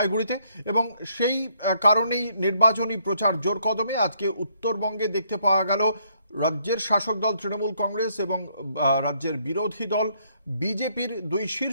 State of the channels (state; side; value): inverted; both; correlation -0.70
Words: এবং সেই কারণেই নির্বাচনী প্রচার জোর কদমে। আজকে উত্তরবঙ্গে দেখতে পাওয়া গেল রাজ্যের শাসক দল তৃণমূল কংগ্রেস এবং রাজ্যের বিরোধী দল বিজেপির দুই